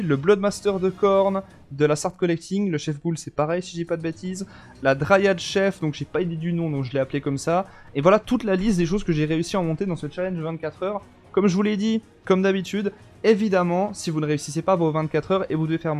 le Bloodmaster de Khorne, de la Sard Collecting, le Chef Ghoul c'est pareil si je dis pas de bêtises, la Dryad Chef, donc j'ai pas idée du nom donc je l'ai appelé comme ça, et voilà toute la liste des choses que j'ai réussi à monter dans ce challenge 24 heures. Comme je vous l'ai dit, comme d'habitude, évidemment si vous ne réussissez pas vos 24 heures et vous devez faire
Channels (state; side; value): identical; both; correlation 1.00